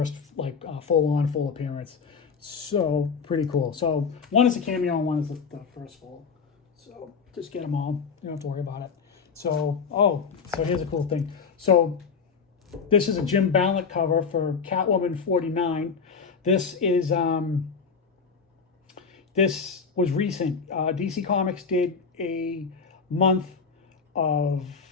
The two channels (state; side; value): quieter; right; 5.6 dB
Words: like full appearance. So pretty cool. So one is a cameo and one is the first full. So just get them all. You don't have to worry about it. So so here's a cool thing. So this is a Jim Ballant cover for Catwoman 49. This is this was recent. DC Comics did a month of